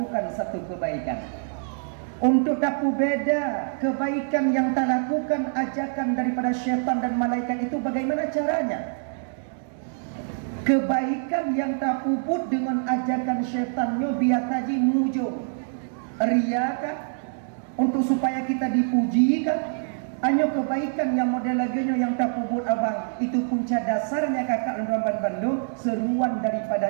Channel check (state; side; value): silent; left; digital silence